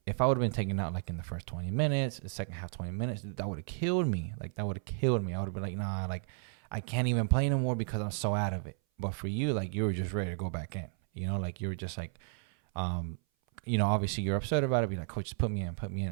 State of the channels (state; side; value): silent; left; 56 dB below the other